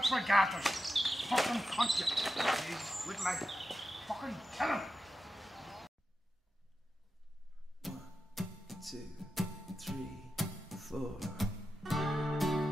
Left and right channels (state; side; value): normal; both; correlation 0.91